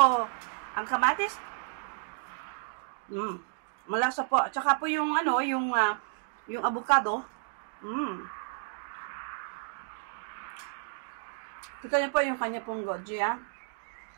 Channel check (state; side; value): silent; left; digital silence